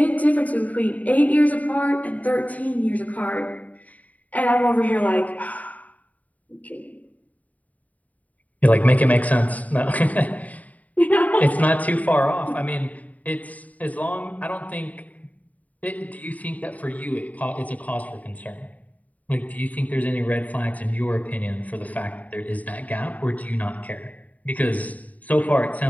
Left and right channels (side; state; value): right; late; 0.072 ms